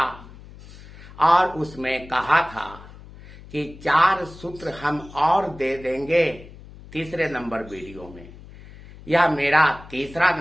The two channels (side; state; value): left; noise; hum, 18 dB below the sound